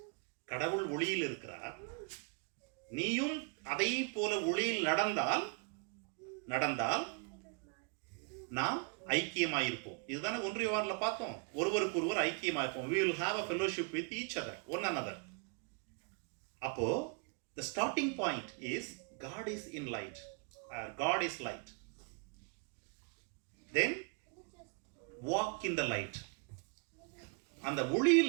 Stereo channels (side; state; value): left; quieter; 37.2 dB